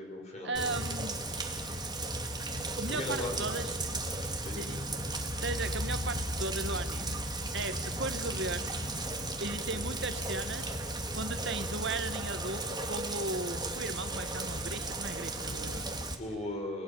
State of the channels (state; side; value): normal; both; correlation 0.35